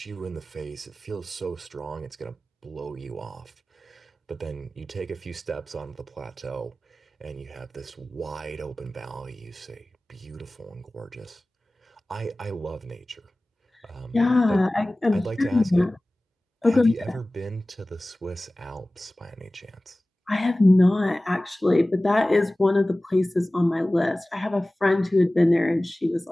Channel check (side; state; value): both; normal; correlation 0.97